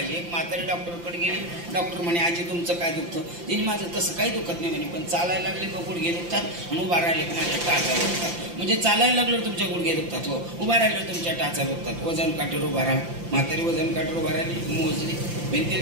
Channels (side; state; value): left; late; 5.8 ms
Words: एक म्हातारी डॉक्टरकडे गेली, डॉक्टर म्हणे आजी तुमचं काय दुखतं? तिने माझं तसं काही दुखत नाही म्हणे, पण चालायला लागले का गुडघे दुखतात आणि उभा राहिले का माझ्या टाचा दुखतात. म्हणजे चालायला लागलं तुमच्या गुडघे दुखतात, हो, उभा राहिलं तुमच्या टाचा दुखतात. वजन काठीवर उभा राहा. म्हातारी वजन काठीवर उभा राहिली, मोजली,